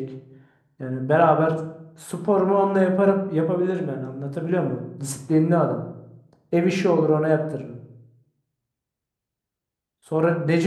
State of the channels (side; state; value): both; identical; correlation 1.00